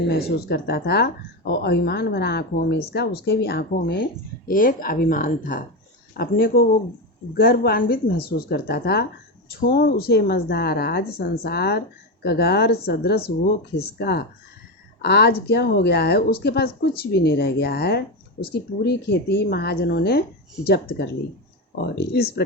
महसूस करता था। और अभिमान भरा आँखों में इसका, उसके भी आँखों में एक अभिमान था। अपने को वो गर्वान्वित महसूस करता था। छोड़ उसे मझधार आज संसार कगार सदृश वो खिसका। आज क्या हो गया है? उसके पास कुछ भी नहीं रह गया है। उसकी पूरी खेती महाजनों ने जब्त कर ली और इस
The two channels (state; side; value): normal; both; correlation 0.14